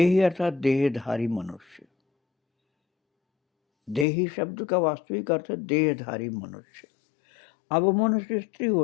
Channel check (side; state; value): right; drops out; at 4.0 s